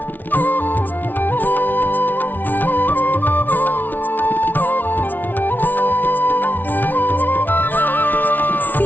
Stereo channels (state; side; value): late; right; 0.086 ms